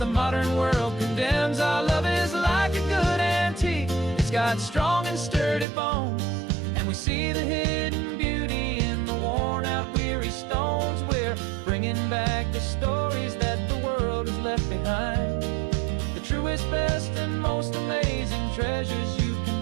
modern world condemns. Our love is like a good antique, it's got strong and sturdy bones, and we see the hidden beauty in the worn out weary stones. We're bringing back the stories that the world has left behind, the truest, best, and most amazing treasures you can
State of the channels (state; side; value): drops out; left; at 5.7 s